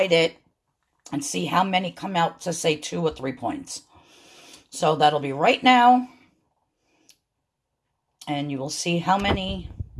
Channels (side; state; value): both; identical; correlation 1.00